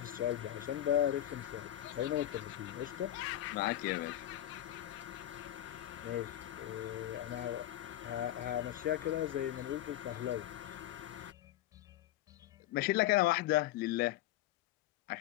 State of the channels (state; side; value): quieter; right; 13.4 dB